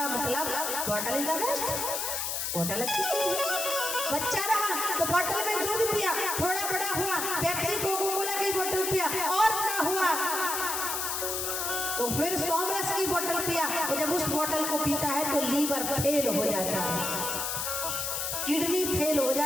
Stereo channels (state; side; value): noise; left; hiss, 1 dB below the sound